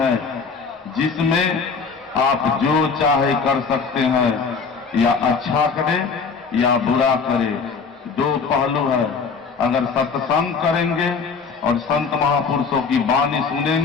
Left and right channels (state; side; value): quieter; right; 5.2 dB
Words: जिसमें आप जो चाहे कर सकते हैं, या अच्छा करे या बुरा करे। दो पहलू है। अगर सत्संग करेंगे और संत महापुरुषों की वाणी